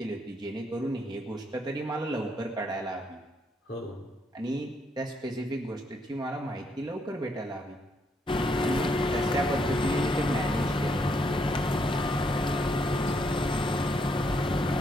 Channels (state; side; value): normal; both; correlation 0.74